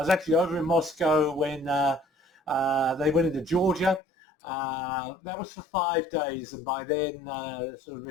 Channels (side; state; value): right; drops out; at 4.0 s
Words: actually over in Moscow when they went into Georgia. That was for 5 days, and by then the sort of